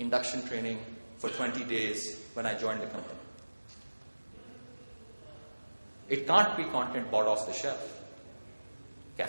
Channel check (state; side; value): inverted; both; correlation -1.00